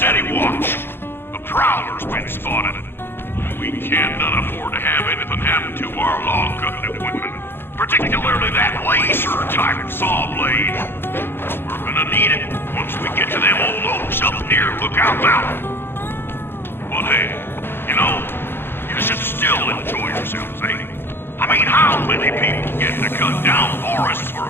watch. A prowler's been spotted. We can't afford to have anything happen to our log cutting equipment. Particularly that laser-type saw blade. We're gonna need it once we get to them old oaks up near Lookout Mountain. But hey, you know, you should still enjoy yourselves, eh? I mean, how many people get to cut down forests for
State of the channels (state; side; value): late; right; 0.10 ms